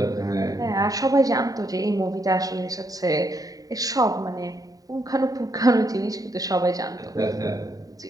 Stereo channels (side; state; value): left; late; 0.18 ms